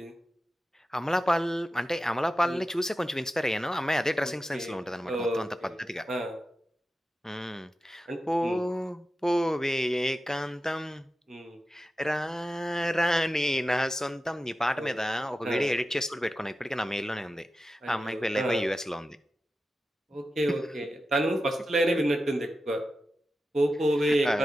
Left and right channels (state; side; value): normal; both; correlation 0.92